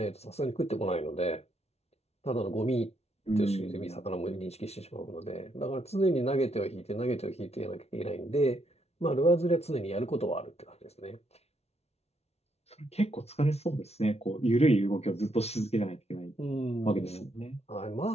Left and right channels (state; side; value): late; right; 0.31 ms